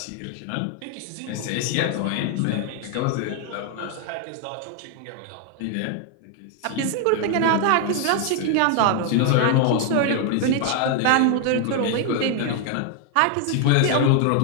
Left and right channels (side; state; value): both; different; correlation 0.00